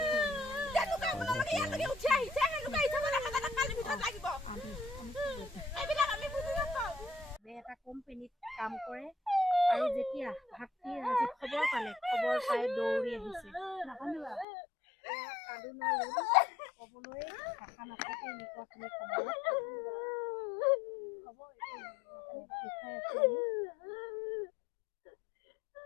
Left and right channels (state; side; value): drops out; right; at 14.5 s